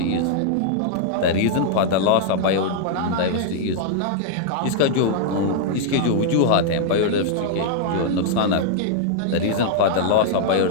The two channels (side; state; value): both; different; correlation -0.01